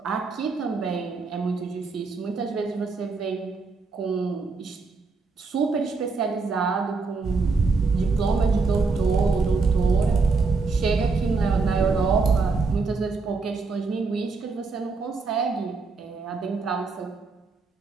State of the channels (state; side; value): quieter; left; 4.2 dB